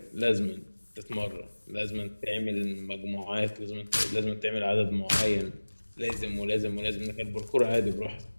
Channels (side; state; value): both; inverted; correlation -1.00